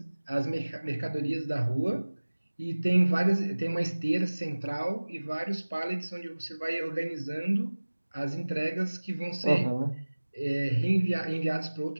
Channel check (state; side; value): inverted; both; correlation -1.00